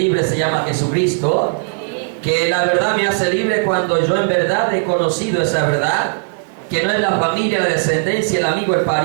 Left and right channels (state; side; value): silent; left; digital silence